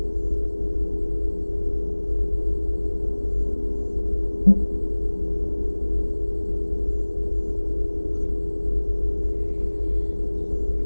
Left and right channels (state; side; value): inverted; both; correlation -1.00